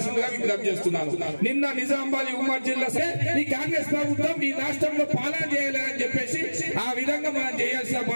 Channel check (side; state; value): both; inverted; correlation -1.00